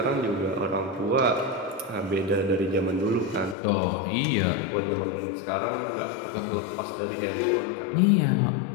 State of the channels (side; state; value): right; drops out; at 3.6 s